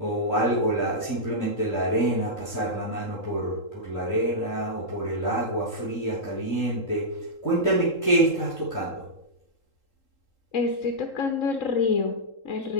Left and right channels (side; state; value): right; late; 3.7 ms